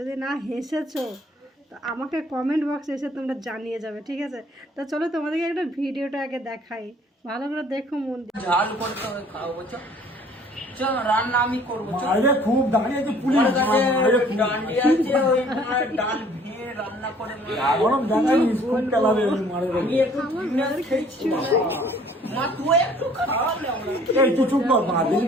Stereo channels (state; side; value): normal; both; correlation 0.56